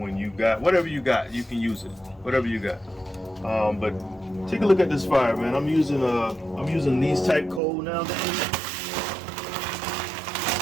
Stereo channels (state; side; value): drops out; left; at 7.6 s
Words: you got whatever you got. You can use it, whatever you got. But take a look at this fire, man. I'm using these type coal nowadays.